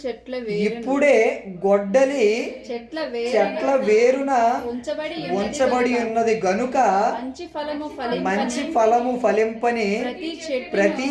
గొడ్డలి చెట్ల వేరున ఉంచబడి ఉన్నది గనుక మంచి ఫలము ఫలింపని ప్రతి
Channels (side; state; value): both; identical; correlation 1.00